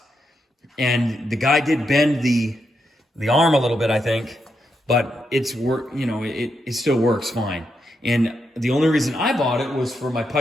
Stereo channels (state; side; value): normal; both; correlation 0.83